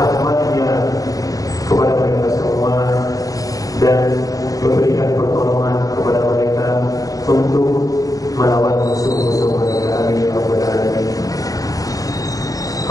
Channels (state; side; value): late; right; 0.17 ms